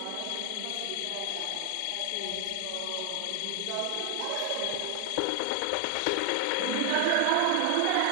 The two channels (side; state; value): both; different; correlation 0.00